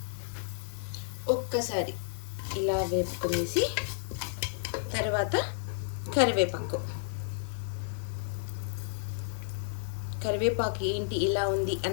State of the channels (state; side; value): silent; right; digital silence